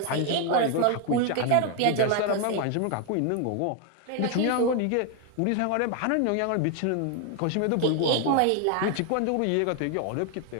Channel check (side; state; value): both; different; correlation 0.00